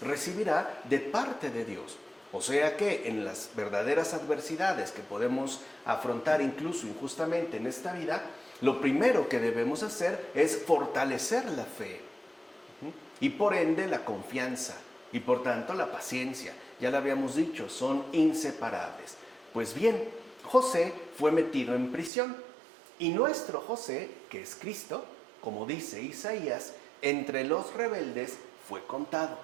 de parte de Dios. O sea que en las verdaderas adversidades que podemos afrontar incluso injustamente en esta vida, lo primero que debemos hacer es fortalecer la fe y por ende la confianza y por tanto la paciencia. Ya lo habíamos dicho, son inseparables. Pues bien, José fue metido en prisión y nuestro José, que es Cristo, como dice Isaías, entre los rebeldes fue contado.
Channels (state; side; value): drops out; left; at 22.1 s